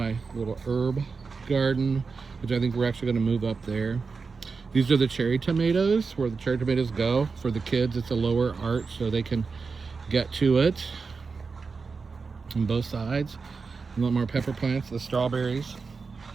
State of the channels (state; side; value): quieter; left; 4.7 dB